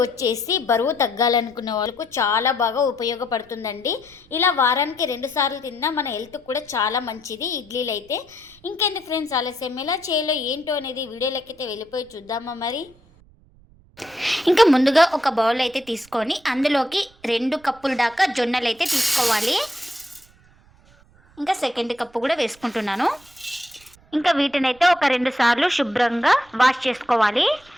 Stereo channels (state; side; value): noise; right; rumble, 28 dB below the sound